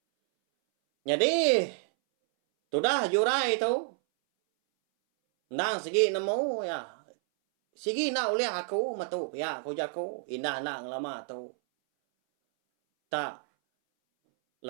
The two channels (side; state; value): left; silent; 58 dB below the other